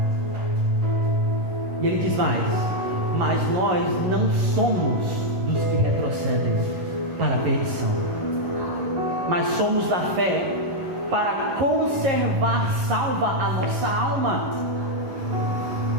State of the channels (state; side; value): late; left; 11 ms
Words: E ele diz mais: mas nós não somos dos que retrocedem para a perdição, mas somos da fé para conservar salva a nossa alma.